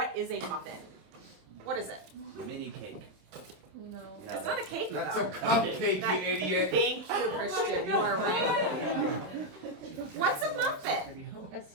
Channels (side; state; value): left; late; 27 ms